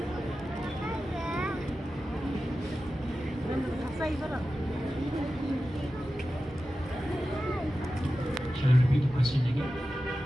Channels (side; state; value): both; normal; correlation 0.93